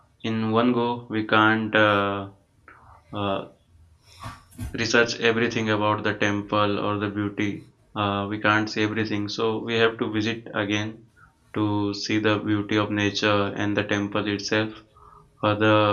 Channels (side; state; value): both; identical; correlation 1.00